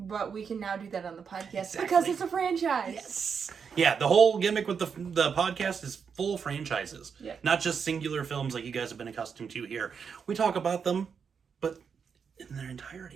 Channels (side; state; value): left; quieter; 6.4 dB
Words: we can now do that on the podcast because it's a franchise. Yes. Yeah, the whole gimmick with the podcast is full franchises. Yeah. Not just singular films like you guys have been accustomed to here. We talk about them, but in their